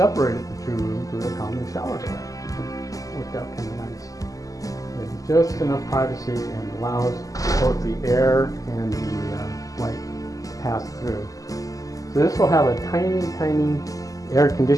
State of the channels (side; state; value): right; late; 0.17 ms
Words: the two rooms with a common shower door, which worked out kind of nice. It's just enough privacy and allows both the air and the light to pass through. So this will have a tiny air